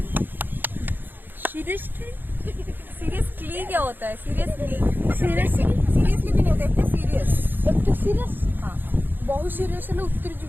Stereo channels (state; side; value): late; left; 0.093 ms